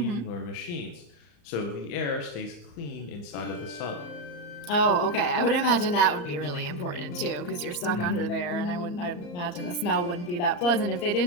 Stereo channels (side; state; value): right; late; 34 ms